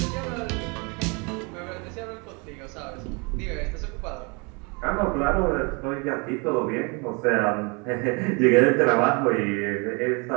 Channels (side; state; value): left; quieter; 31.2 dB